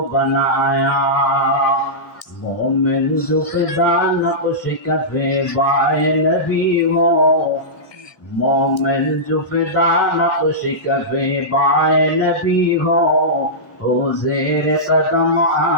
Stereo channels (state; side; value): late; right; 1.6 ms